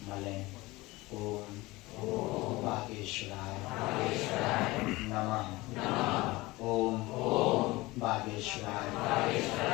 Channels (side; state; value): right; quieter; 21.0 dB